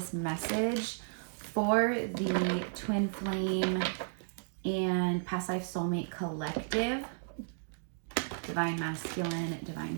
message for the Twin Flame and Past Life Soulmate Collective. Divine Masculine, Divine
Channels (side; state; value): left; silent; digital silence